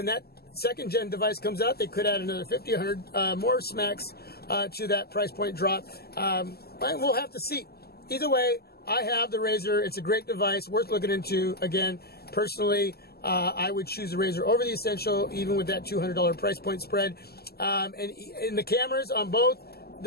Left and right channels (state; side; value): late; right; 0.46 ms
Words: that second gen device comes out. They could add another 50, 100 more smacks to that price point drop. But we'll have to see. Either way, I have the Razer. It's a great device, worth looking into. Again, personally, I would choose the Razer over the Essential, even with that $200 price point spread. And the cameras on both